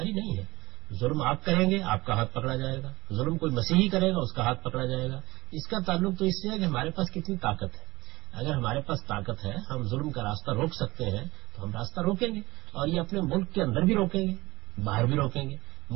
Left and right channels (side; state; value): left; quieter; 20.4 dB